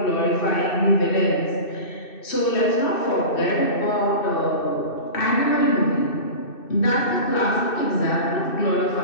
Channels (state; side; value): late; right; 2.6 ms